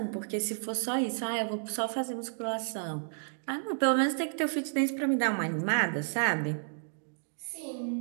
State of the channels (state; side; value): silent; left; digital silence